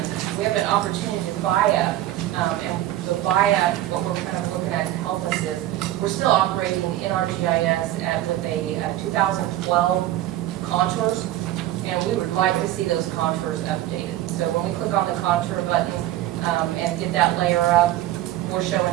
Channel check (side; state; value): left; quieter; 14.2 dB